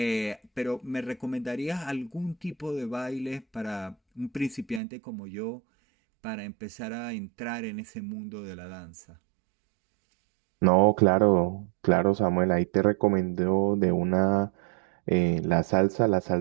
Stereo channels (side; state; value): left; drops out; at 4.8 s